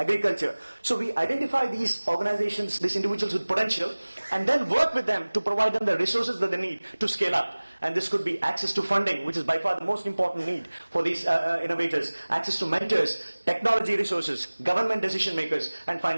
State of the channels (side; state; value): both; inverted; correlation -1.00